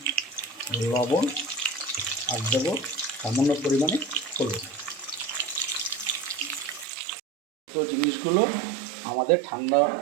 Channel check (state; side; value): drops out; left; at 6.9 s